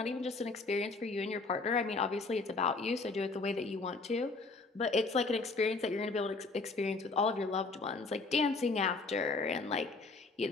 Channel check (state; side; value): quieter; right; 3.8 dB